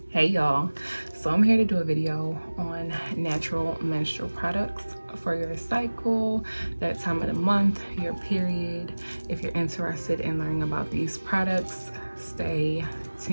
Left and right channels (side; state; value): both; inverted; correlation -1.00